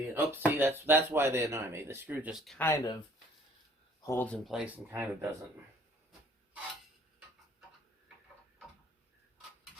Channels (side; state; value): both; normal; correlation 0.56